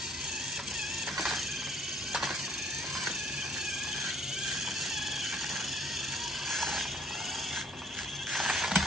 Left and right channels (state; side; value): normal; both; correlation 0.58